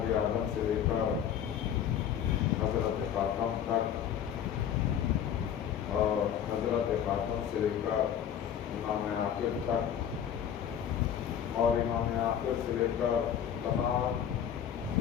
آدم سے لے کر حضرت خاتم تک اور حضرت خاتم سے لے کر امام آخر تک اور امام آخر سے لے کر تمام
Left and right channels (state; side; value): quieter; right; 9.2 dB